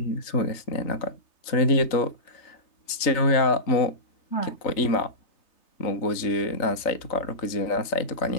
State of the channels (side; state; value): right; late; 3.3 ms